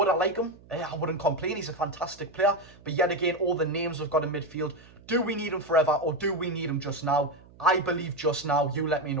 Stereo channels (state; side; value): noise; right; hum, 24 dB below the sound